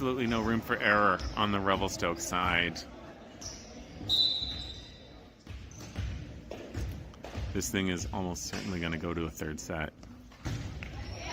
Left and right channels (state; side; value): identical; both; correlation 1.00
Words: no room for error on the Revelstoke side. This thing is almost certainly going to go to a third set.